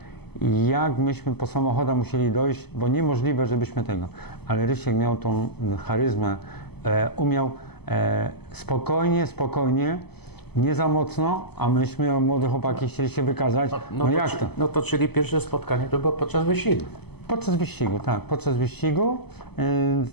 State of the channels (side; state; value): right; late; 0.97 ms